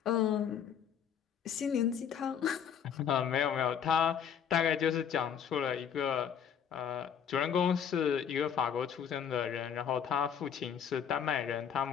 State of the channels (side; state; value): right; quieter; 8.1 dB